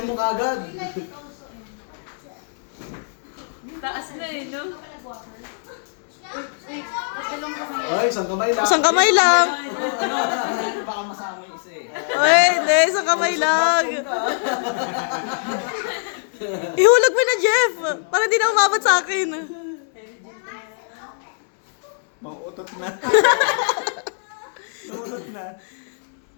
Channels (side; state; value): right; silent; digital silence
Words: mo kagad. Taas na eh, no? Wait, dalawang kamay. Ay, isang kamay lang. Isang kamay lang. Ano, baka masama yung isa eh. Ay, hindi. Isang kamay lang. Ihulog mo na, Jeff. Para di na umabot sa akin. Mauutot na. Mauutot na.